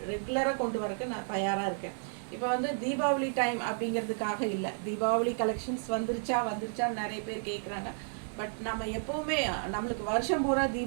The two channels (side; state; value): left; silent; digital silence